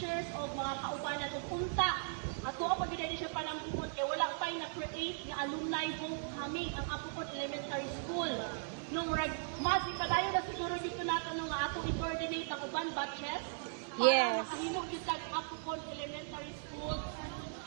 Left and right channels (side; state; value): left; silent; digital silence